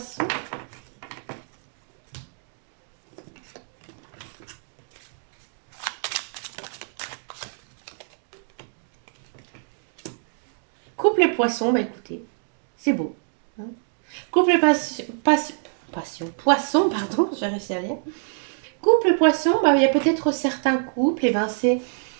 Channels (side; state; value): left; silent; 61 dB below the other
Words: Couple poisson, bah écoutez, c'est beau, hein. Couple passion, poisson, pardon, j'ai réussi à lire. Couple poisson, bah, il y a peut-être certains couples, et ben